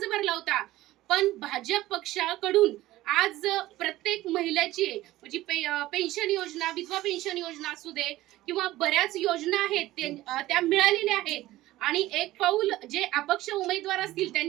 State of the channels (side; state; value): left; quieter; 16.4 dB